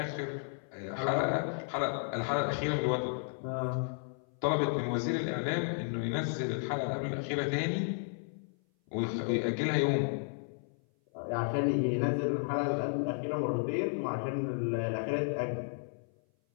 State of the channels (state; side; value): silent; right; 56 dB below the other